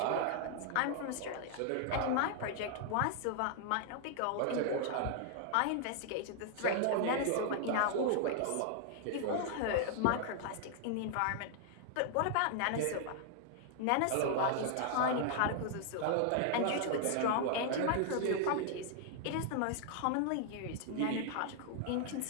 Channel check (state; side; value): different; both; correlation 0.00